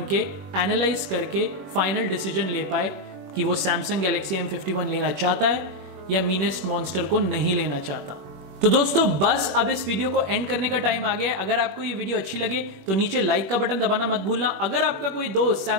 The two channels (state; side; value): late; left; 21 ms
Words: के एनालाइज करके फाइनल डिसीजन ले पाए कि वो सैमसंग गैलेक्सी M51 लेना चाहता है या मीनेस्ट मॉन्स्टर को नहीं लेना चाहता। तो दोस्तों बस अब इस वीडियो को एंड करने का टाइम आ गया है। अगर आपको ये वीडियो अच्छी लगे तो नीचे लाइक का बटन दबाना मत भूलना। अगर आपका कोई दोस्त